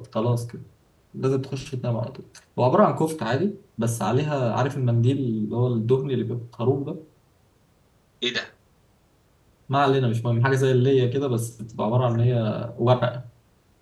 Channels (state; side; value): identical; both; correlation 1.00